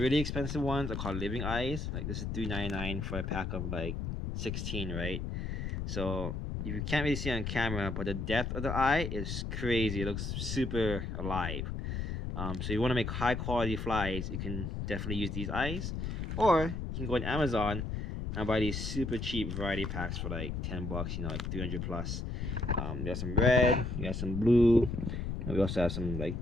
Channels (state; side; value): noise; left; rumble, 3 dB below the sound